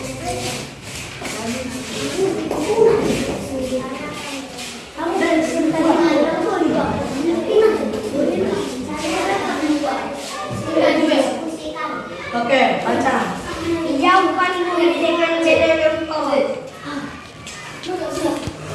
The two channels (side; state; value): both; identical; correlation 1.00